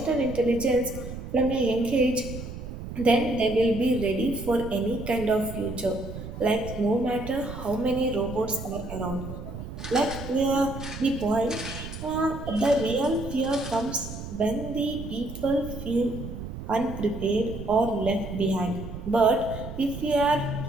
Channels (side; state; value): right; noise; rumble, 9 dB below the sound